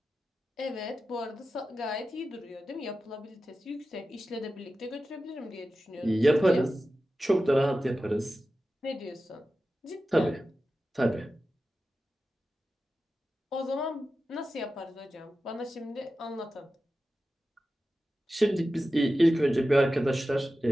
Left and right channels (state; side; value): normal; both; correlation 0.93